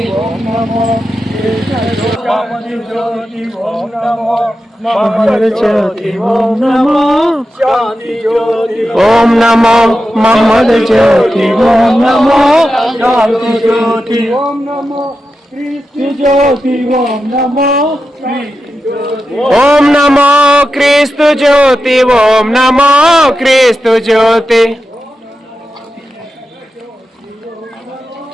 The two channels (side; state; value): both; normal; correlation 0.90